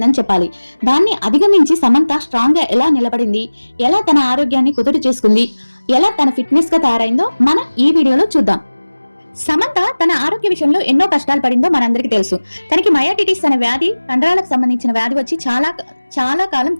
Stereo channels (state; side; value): inverted; both; correlation -1.00